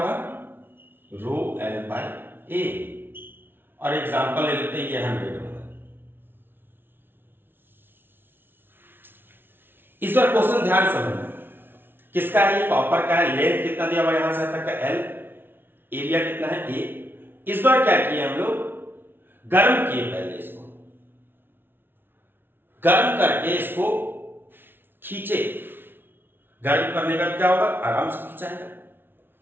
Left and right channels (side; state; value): left; late; 0.10 ms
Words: रो एल बाई ए। और एग्जांपल ले लेते हैं, ये 100 होगा। इस बार क्वेश्चन ध्यान से समझना, किसका है, ये कॉपर का है। लेंथ कितना दिया हुआ यहां से तक का एल, एरिया कितना है, ए। इस बार क्या किया हम लोग, गर्म किए पहले इसको, गर्म करके इसको खींचे। गर्म करने का क्या होगा, आराम से खींचाएगा।